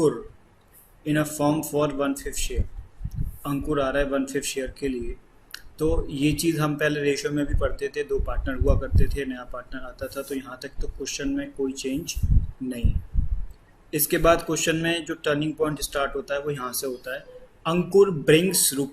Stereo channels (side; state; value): both; identical; correlation 1.00